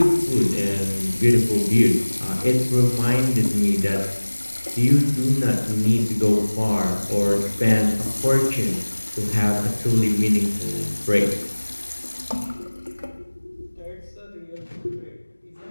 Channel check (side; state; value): both; inverted; correlation -1.00